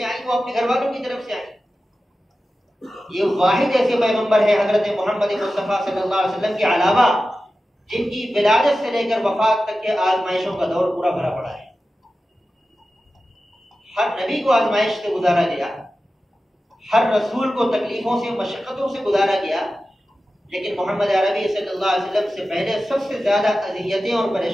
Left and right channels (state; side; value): normal; both; correlation 0.94